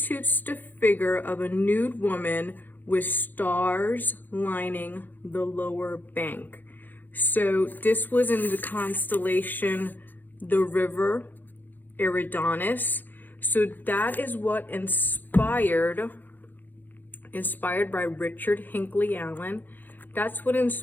the figure of a nude woman with stars lining the lower bank. So this was in the constellation, the river Eridanus. So that is what inspired by Richard Hinckley Allen. That's what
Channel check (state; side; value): late; right; 0.087 ms